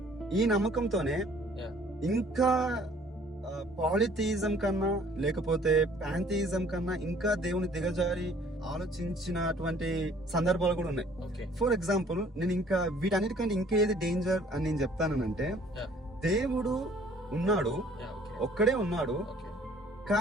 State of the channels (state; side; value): normal; both; correlation 0.56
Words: ఈ నమ్మకంతోనే యా ఇంకా పాలిథియిజం కన్నా లేకపోతే ప్యాంథియిజం కన్నా ఇంకా దేవుని దిగజారి ఆలోచించినటువంటి సందర్భాలు కూడా ఉన్నాయి. ఓకే ఫర్ ఎగ్జాంపుల్ నేను ఇంకా వీటన్నిటికంటే ఇంకా ఏది డేంజర్ అని నేను చెప్తానంటే, Yeah. దేవుడు ఉన్నాడు, యా ఓకే ఒక్కడే ఉన్నాడు, ఓకే